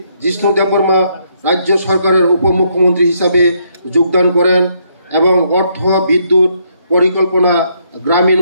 জিষ্ণু দেববর্মা রাজ্য সরকারের উপমুখ্যমন্ত্রী হিসাবে যোগদান করেন এবং অর্থ, বিদ্যুৎ, পরিকল্পনা, গ্রামীণ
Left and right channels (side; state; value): both; inverted; correlation -0.73